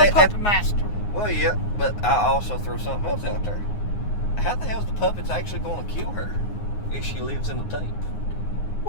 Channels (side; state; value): right; late; 9.6 ms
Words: Puppet Master. Well, yeah, but I also throw something else out there. How the hell is the puppets actually going to kill her if she lives in the tape?